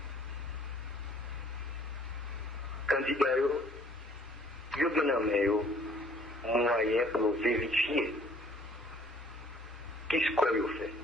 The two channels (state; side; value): normal; both; correlation 0.58